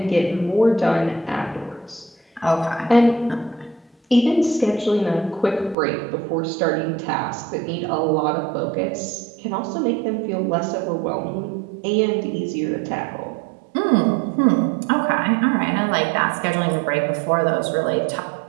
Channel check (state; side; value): drops out; left; at 5.8 s